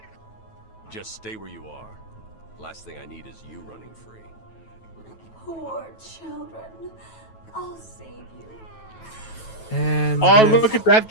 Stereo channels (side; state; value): right; late; 9.2 ms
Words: Just stay where you are. Last thing I need is you running free. Poor children. I'll save you. And oh, look at that